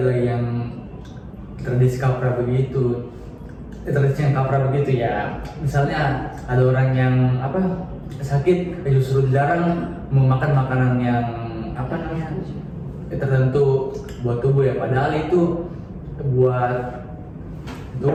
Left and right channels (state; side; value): identical; both; correlation 1.00